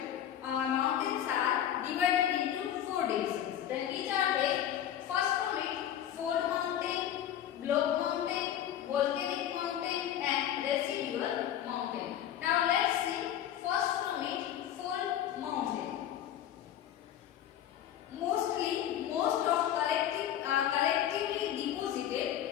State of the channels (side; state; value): right; quieter; 10.8 dB